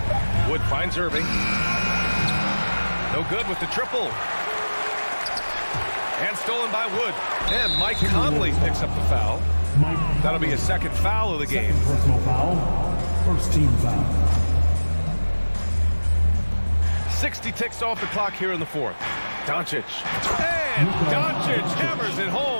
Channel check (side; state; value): both; inverted; correlation -1.00